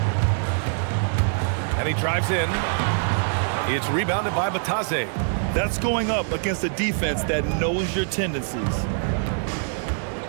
And he drives in. It's rebounded by Bataze. That's going up against a defense that knows your tendencies.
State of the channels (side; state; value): left; silent; digital silence